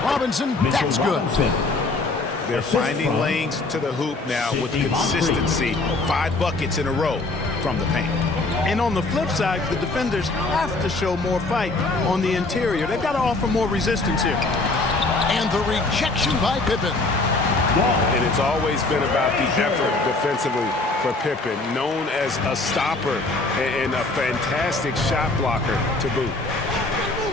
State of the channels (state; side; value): quieter; right; 3.3 dB